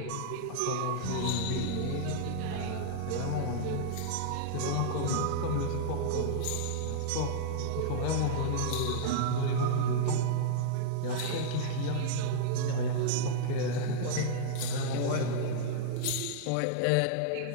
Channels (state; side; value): different; both; correlation -0.02